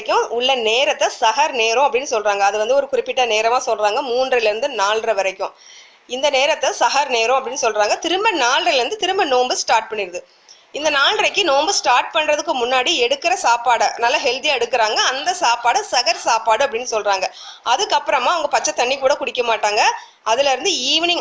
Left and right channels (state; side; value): identical; both; correlation 1.00